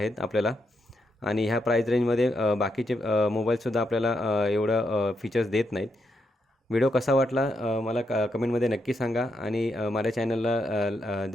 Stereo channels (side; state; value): both; normal; correlation 0.81